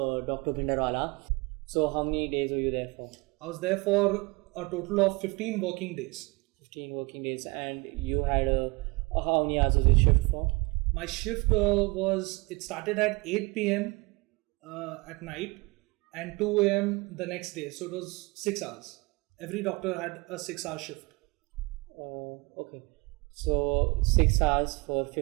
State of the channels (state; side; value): quieter; left; 25.4 dB